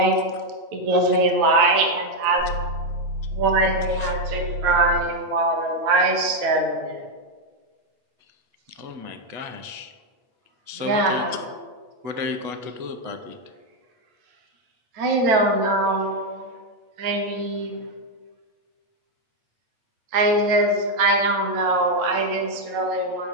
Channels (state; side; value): late; left; 9.2 ms